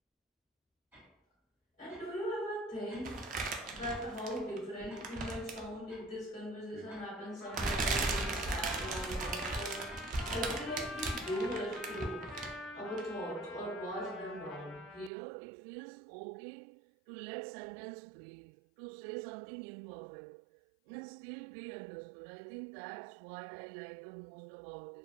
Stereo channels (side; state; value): left; drops out; at 15.1 s